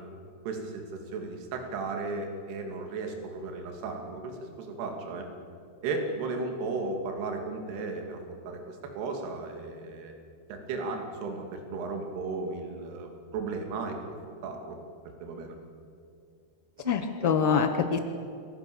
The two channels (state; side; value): late; left; 13 ms